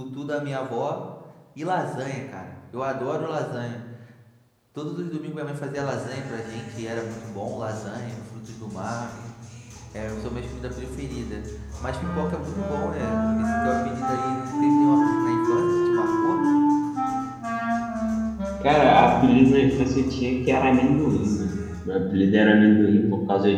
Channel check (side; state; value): both; identical; correlation 1.00